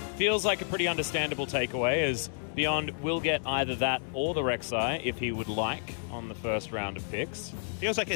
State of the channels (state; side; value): silent; right; 57 dB below the other